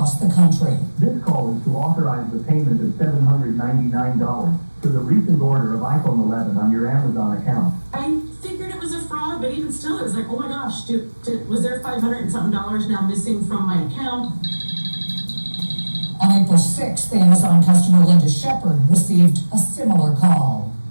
the country. This call is to authorize the payment of $799 for the recent order of iPhone 11 on your Amazon account. I figured it was a fraud, but even still, it was like, oh my gosh, was there $500 and something now missing from my account? On April 6th, Amazon customer Linda Shepard received a similar call.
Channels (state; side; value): inverted; both; correlation -1.00